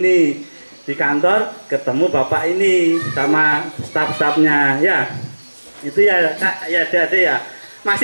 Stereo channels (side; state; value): both; inverted; correlation -1.00